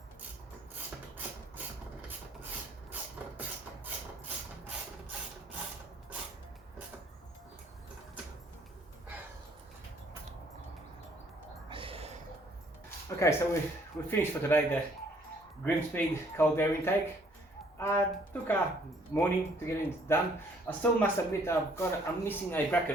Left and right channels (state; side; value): normal; both; correlation 0.62